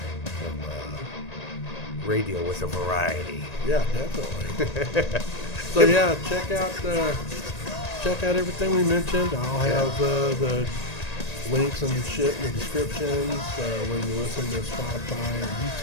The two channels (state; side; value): late; right; 1.9 ms